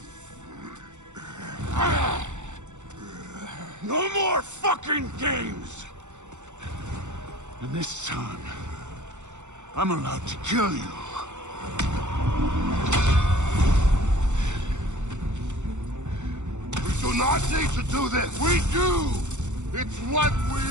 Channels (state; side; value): late; left; 0.84 ms